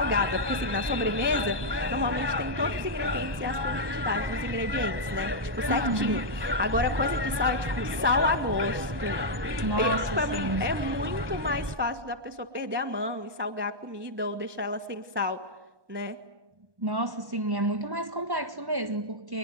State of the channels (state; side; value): late; left; 1.2 ms